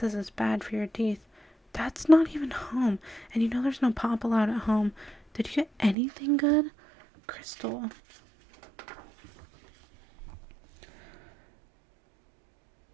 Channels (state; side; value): drops out; left; at 6.0 s